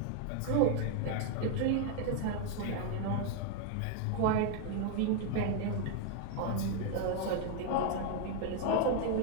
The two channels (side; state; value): both; different; correlation 0.00